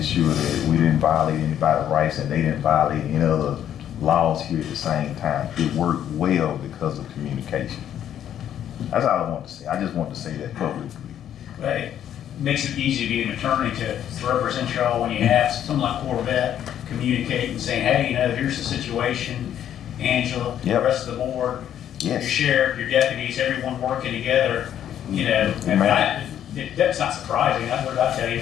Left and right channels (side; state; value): right; quieter; 10.3 dB